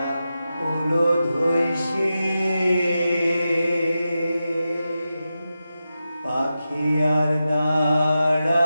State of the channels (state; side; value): inverted; both; correlation -0.91